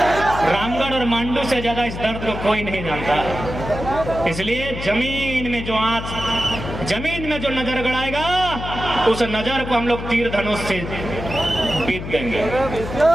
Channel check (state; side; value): noise; left; hum, 8 dB below the sound